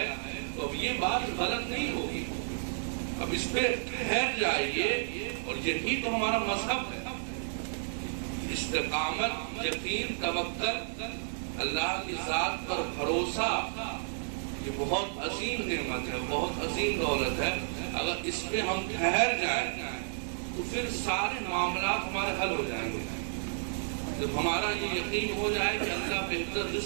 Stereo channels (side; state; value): left; silent; 57 dB below the other